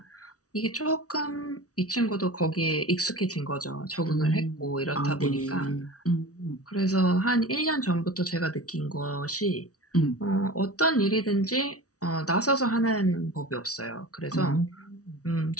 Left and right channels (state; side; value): late; right; 0.67 ms